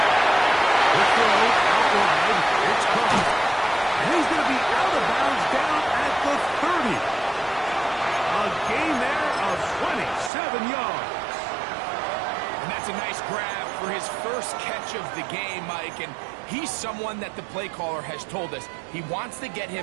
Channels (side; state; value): left; drops out; at 10.3 s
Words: The throw out wide. It's caught. And he's going to be out of bounds down at the 30. A gain there of 27 yards. And that's a nice grab for his first catch of the game, Mike. And he's someone that the play caller has told us he wants to get